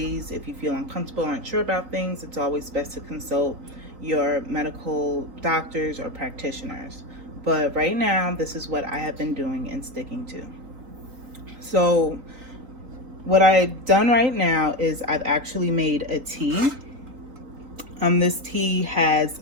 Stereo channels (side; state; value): left; late; 3.6 ms